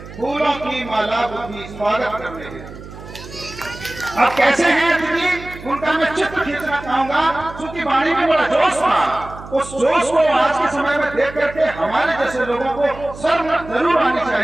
फूलों की माला बुद्धि स्वागत करते हैं। अब कैसे हैं अतिथि, उनका मैं चित्र खींचना चाहूंगा, क्योंकि वाणी में बड़ा जोश था। उस जोश को आज के समय में देख करके हमारे जैसे लोगों को शर्म जरूर आनी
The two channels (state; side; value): noise; right; hum, 15 dB below the sound